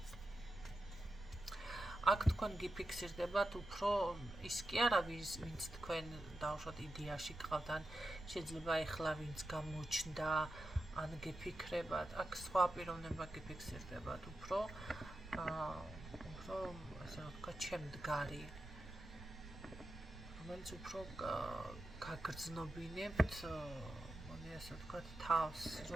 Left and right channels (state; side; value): noise; right; rumble, 13 dB below the sound